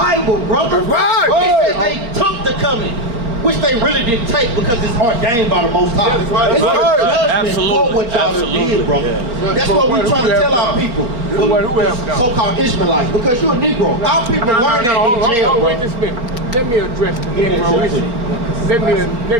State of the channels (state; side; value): late; left; 4.3 ms